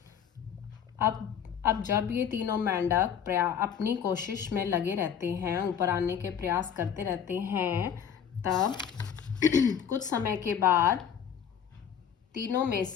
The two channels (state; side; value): quieter; right; 8.2 dB